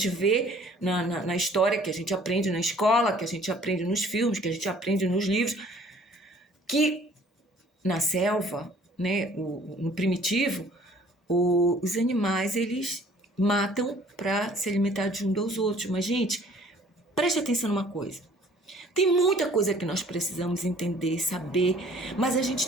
vê na história, que a gente aprende na escola, que a gente aprende nos filmes, que a gente aprende nos livros, que na selva, né, no primitivo, os animais, eles matam para se alimentar de um dos outros. Mas, gente, preste atenção numa coisa. Tem muita coisa que nós precisamos entender, saber, mas a gente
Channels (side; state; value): both; normal; correlation 0.54